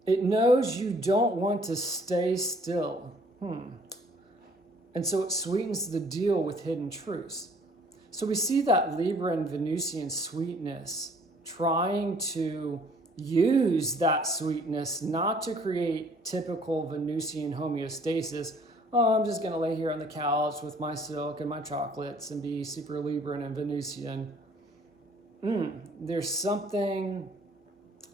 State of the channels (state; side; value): normal; both; correlation 0.58